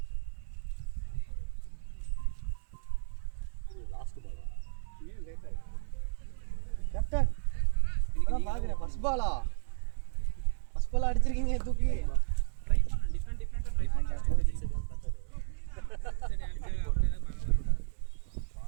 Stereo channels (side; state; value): left; silent; 56 dB below the other